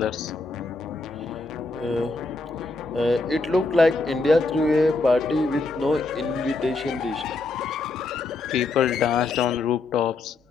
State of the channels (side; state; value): right; quieter; 3.5 dB